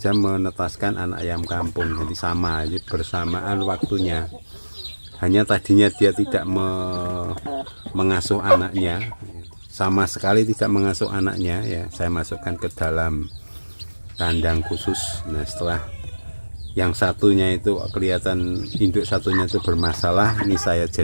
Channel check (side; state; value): both; inverted; correlation -1.00